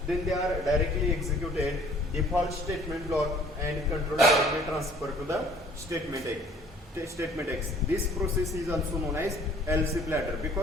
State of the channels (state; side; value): normal; both; correlation 0.55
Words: then they are directly executed default statement block and control directly transfer to the statement x. This process is also known as else if ladder